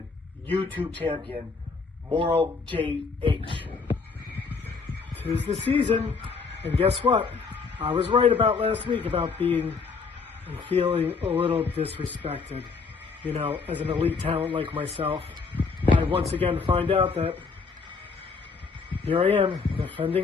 YouTube champion, Moral JH. 'Tis the season, and guess what? I was right about last week about being and feeling a little disrespected. You know, as an elite talent like myself, I once again find out that here I am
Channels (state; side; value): quieter; right; 4.8 dB